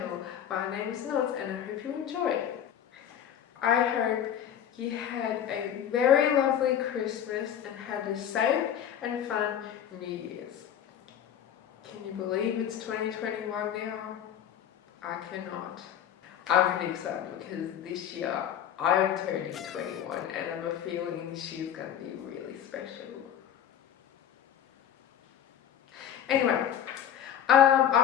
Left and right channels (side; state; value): right; quieter; 9.7 dB